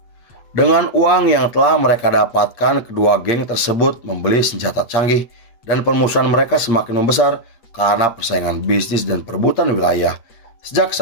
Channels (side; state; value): right; late; 8.6 ms